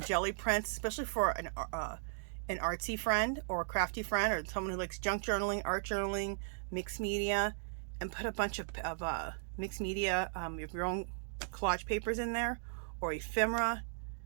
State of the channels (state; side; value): silent; left; digital silence